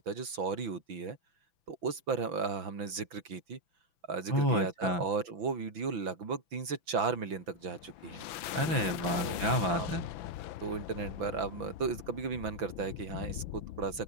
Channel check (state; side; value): late; left; 6.0 ms